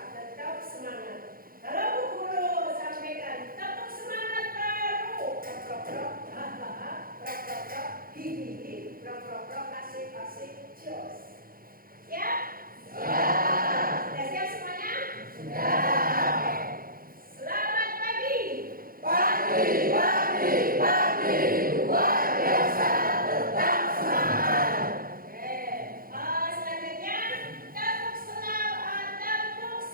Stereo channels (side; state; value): left; late; 0.42 ms